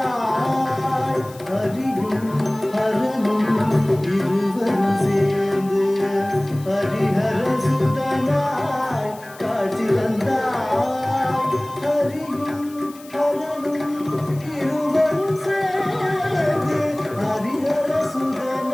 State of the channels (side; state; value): left; noise; hiss, 22 dB below the sound